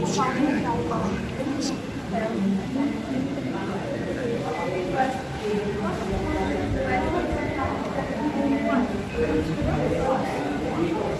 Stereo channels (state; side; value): identical; both; correlation 1.00